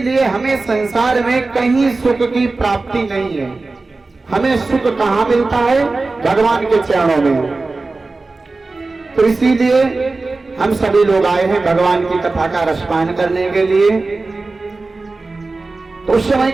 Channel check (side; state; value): left; quieter; 3.6 dB